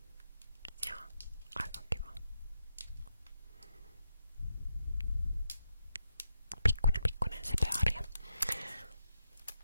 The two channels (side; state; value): both; inverted; correlation -0.83